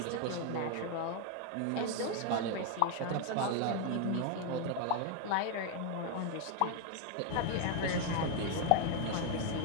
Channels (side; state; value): both; different; correlation 0.01